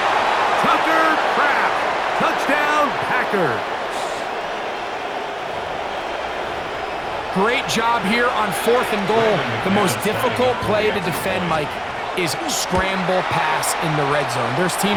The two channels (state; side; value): identical; both; correlation 1.00